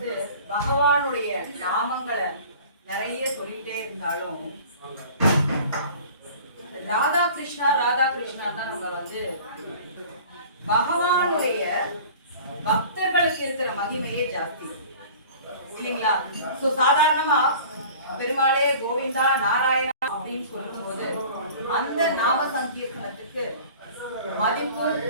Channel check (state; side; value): inverted; both; correlation -0.44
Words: பகவானுடைய நாமங்களை நிறைய சொல்லிட்டே இருந்தாலும் ராதா கிருஷ்ணா ராதா கிருஷ்ணா தான் நம்ம பகவானுடைய பக்தர்களுக்கு இருக்கிற மகிமையே ஜாஸ்தி இல்லைங்களா? சோ சாதாரணமா பெருமாளே கோவிந்தா நாராயணா அப்படின்னு சொல்லும் போது அந்த நாம சங்கீர்த்தனத்துக்கு மதிப்பு